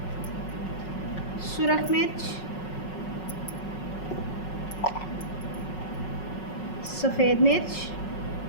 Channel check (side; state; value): right; late; 5.4 ms